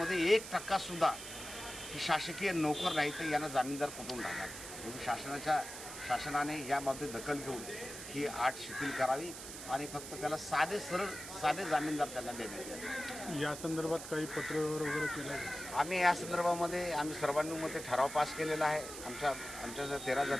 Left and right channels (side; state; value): right; noise; hiss, 10 dB below the sound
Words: 1% की शासकीय नोकर नाही, तर यांना जामीनदार कुठून राहणार? म्हणून शासनाने याबाबतीत दखल घेऊन ही अट शिथिल करावी आणि फक्त त्याला साधे जामीनदार त्यांना देण्यात यावे. या संदर्भात काही पत्र वगैरे केलं आहे? आम्ही या संदर्भामध्ये सर्वांनुमते ठराव पास केलेला आहे. आमच्या 13